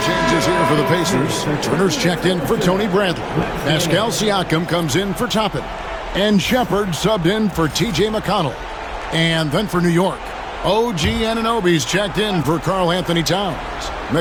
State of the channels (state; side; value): identical; both; correlation 1.00